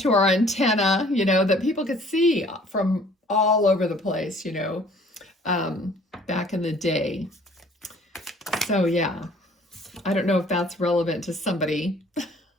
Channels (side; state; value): both; normal; correlation 0.55